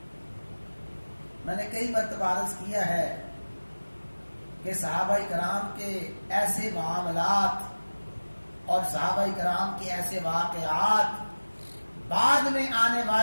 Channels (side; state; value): both; inverted; correlation -1.00